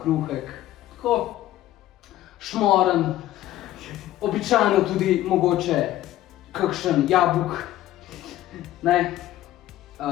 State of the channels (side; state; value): right; quieter; 14.1 dB